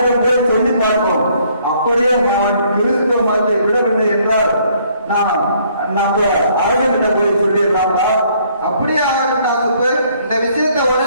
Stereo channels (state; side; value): inverted; both; correlation -0.64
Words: போய் சொல்லி பார்ப்போம். அப்படியே நான் கிறிஸ்துவ மதத்தை விடவில்லை என்றால் நான் நம்ம அரசங்கிட்ட போய் சொல்லிடலாம்ப்பா. அப்படியே ஆகட்டும் சுப்பு. இந்த விஷயத்தை